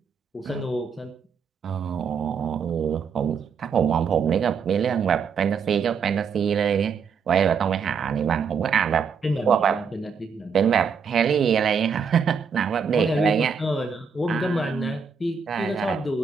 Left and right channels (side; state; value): left; quieter; 6.0 dB